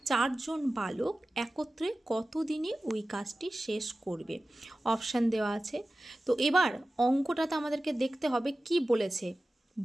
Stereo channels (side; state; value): both; normal; correlation 0.95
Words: 4 জন বালক একত্রে কত দিনে ওই কাজটি শেষ করবে? অপশান দেওয়া আছে। তো এবার অঙ্কটাতে আমাদেরকে দেখতে হবে কি বলেছে।